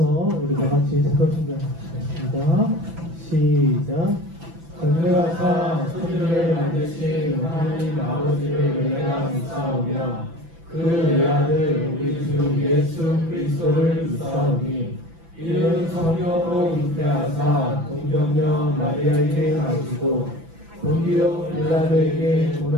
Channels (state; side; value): late; left; 6.0 ms